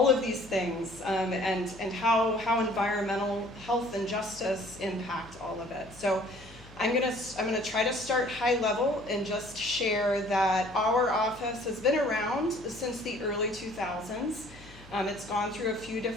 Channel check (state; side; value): noise; left; hum, 21 dB below the sound